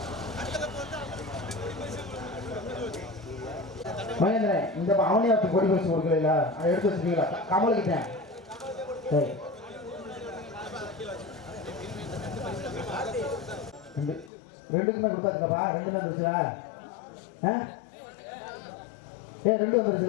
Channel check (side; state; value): right; drops out; at 14.3 s